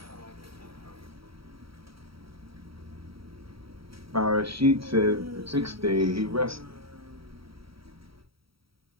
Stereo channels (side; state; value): left; late; 0.75 ms